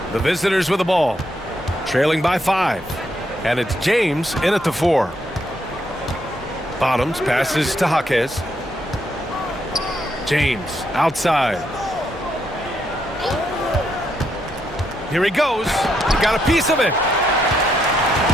The visitors with the ball, trailing by 5. And it's James in at the 4. Bottoms passes to Jaquez. James outside. Here he goes. He got a piece of it.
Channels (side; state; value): both; normal; correlation 0.77